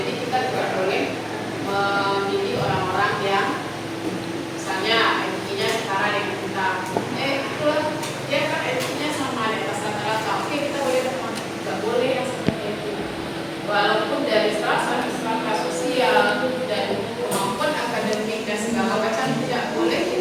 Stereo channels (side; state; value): both; identical; correlation 1.00